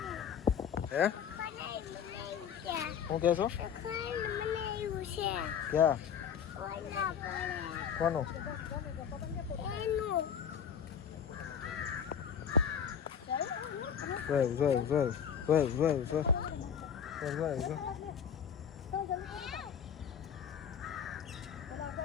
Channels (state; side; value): quieter; right; 7.8 dB